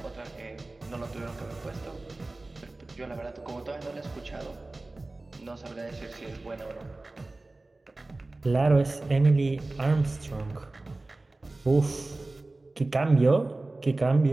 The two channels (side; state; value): left; quieter; 3.0 dB